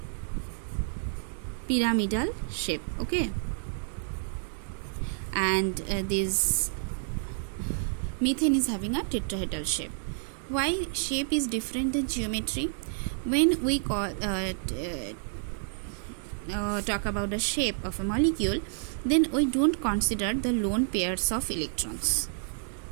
pyramidal shape, okay, and this methane is having a tetrahedral shape. Why shape is different than geometry? When we talk about the shape of a molecule, then we don't consider the lone pairs of electrons,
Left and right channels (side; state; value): left; silent; digital silence